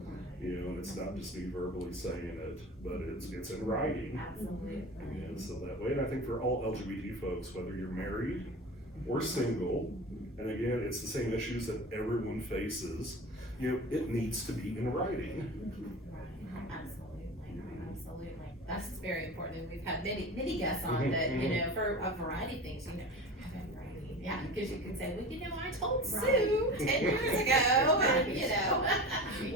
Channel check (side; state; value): both; normal; correlation 0.32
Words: You know, and it's not just me verbally saying it, but it's in writing. Absolutely. You know, so that way, and I think for all LGBT folks, whether you're married or single, and again, it's the same issues that everyone faces, you know, it needs to be in writing. Absolutely. That's very important. And we've had many guests on that, you know, for a variety of things, you know, have it in writing. Yeah, because you can say, well, you know, I told Sue 10 years ago, and you know,